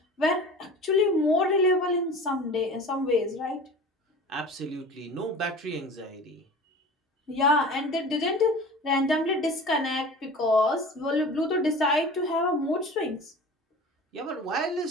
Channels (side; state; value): both; normal; correlation 0.38